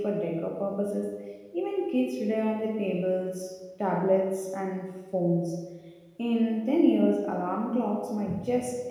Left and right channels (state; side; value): identical; both; correlation 1.00